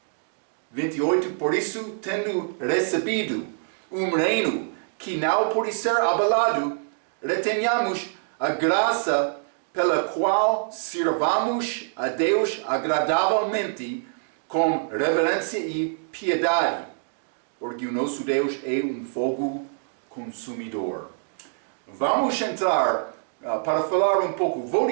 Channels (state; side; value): silent; left; digital silence